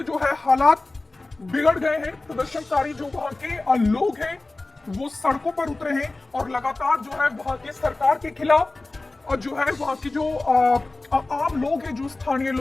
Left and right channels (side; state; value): right; quieter; 3.1 dB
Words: जो है हालात बिगड़ गए हैं। प्रदर्शनकारी जो वहां के लोग हैं वो सड़कों पर उतरे हैं और लगातार जो है वहां की सरकार के खिलाफ और जो है वहां की जो आम लोग हैं, जो स्थानीय